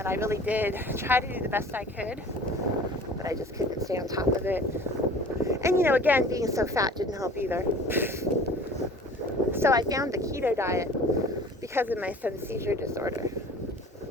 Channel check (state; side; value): normal; both; correlation 0.45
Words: I really did try to do the best I could, but I just couldn't stay on top of it. And again, being so fat didn't help either. So I found the keto diet because of my son's seizure disorder.